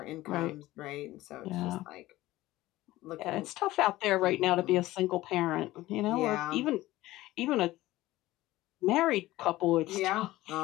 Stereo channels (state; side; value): quieter; right; 17.1 dB